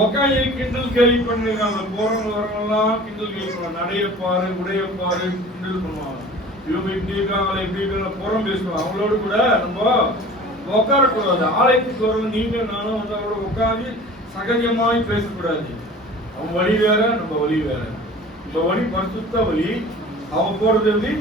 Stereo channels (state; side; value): normal; both; correlation 0.43